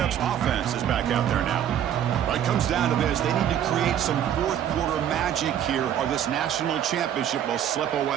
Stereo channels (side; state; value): left; quieter; 10.1 dB